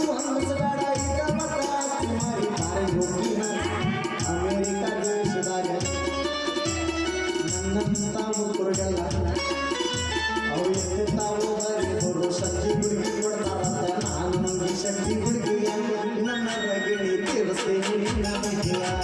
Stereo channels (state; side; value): identical; both; correlation 1.00